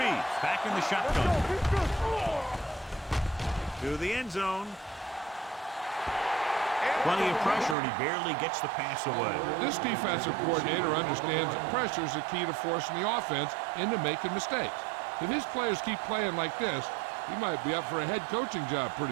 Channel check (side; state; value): left; drops out; at 7.8 s